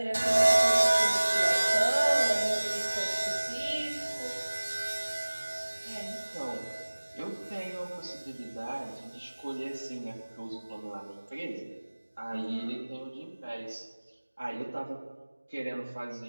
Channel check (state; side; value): inverted; both; correlation -1.00